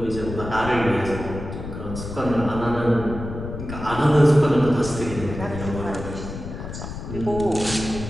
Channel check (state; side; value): noise; left; rumble, 8 dB below the sound